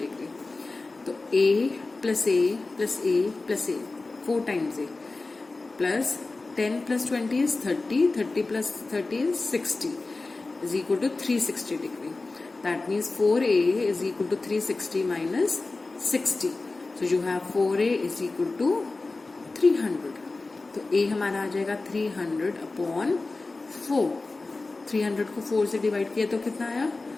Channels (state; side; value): quieter; right; 3.5 dB